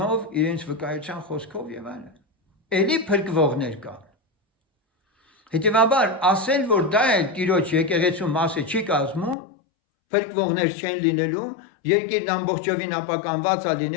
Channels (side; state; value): right; drops out; at 9.3 s